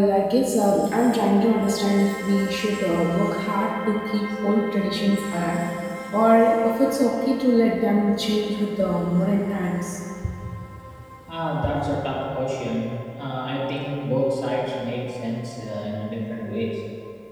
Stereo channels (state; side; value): identical; both; correlation 1.00